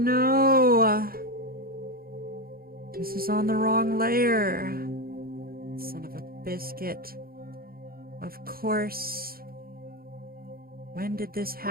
This is on the wrong layer. Son of a biscuit. Of course. When did this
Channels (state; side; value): late; left; 0.43 ms